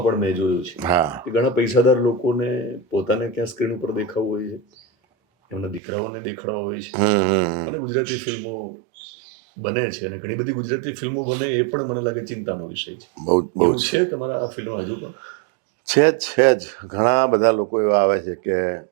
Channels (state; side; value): drops out; left; at 5.8 s